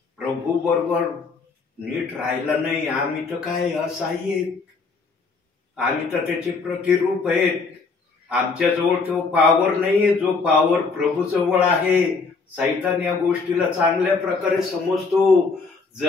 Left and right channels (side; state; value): right; quieter; 4.5 dB